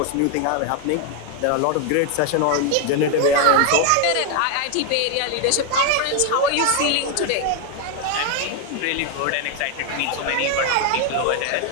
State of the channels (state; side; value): different; both; correlation 0.01